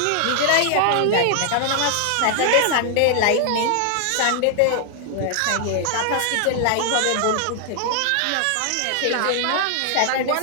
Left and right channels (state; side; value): different; both; correlation 0.00